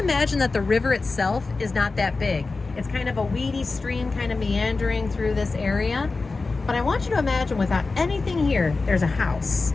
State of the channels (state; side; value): quieter; right; 3.8 dB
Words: that the river itself is not that big. It's kind of a weedy stream kind of meandering through this area. But I want you to imagine without anything here, there's a house